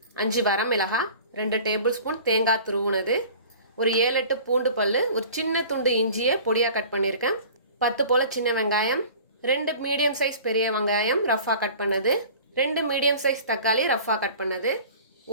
5 வரமிளகாய், 2 டேபிள் ஸ்பூன் தேங்காய் துருவுனது, ஒரு 7-8 பூண்டு பல்லு, ஒரு சின்ன துண்டு இஞ்சியை பொடியாக கட் பண்ணியிருக்கேன், 10 போல சின்ன வெங்காயம், 2 மீடியம் சைஸ் பெரிய வெங்காயம் ரஃபாக கட் பண்ணது, 2 மீடியம் சைஸ் தக்காளி ரஃபாக கட் பண்ணது,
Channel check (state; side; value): inverted; both; correlation -0.43